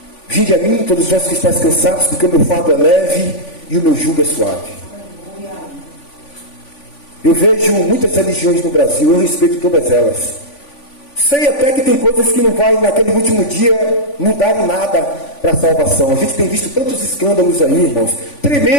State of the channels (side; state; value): right; late; 3.5 ms